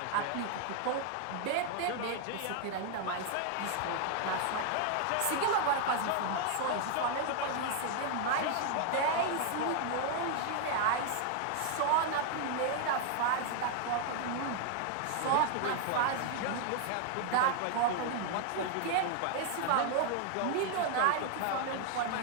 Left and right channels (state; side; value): different; both; correlation 0.00